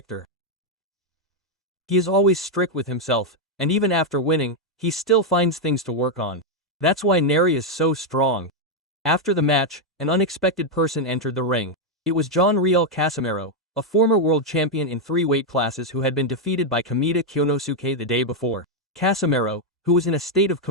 He is always strict with himself, and even after winning, he still finds things to work on. That's why Neri is so strong. After the match, an unexpected person entered the ring. It was John Riel Casimero, a former world champion in 3 weight classes who had been defeated by Kamita Kyonosuke the day before. Casimero, who was in a state of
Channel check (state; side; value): normal; both; correlation 0.01